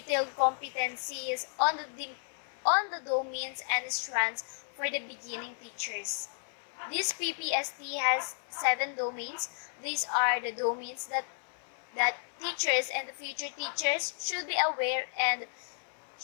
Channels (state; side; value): silent; right; 55 dB below the other